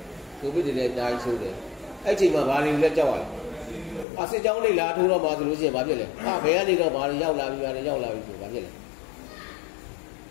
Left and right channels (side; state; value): right; drops out; at 4.0 s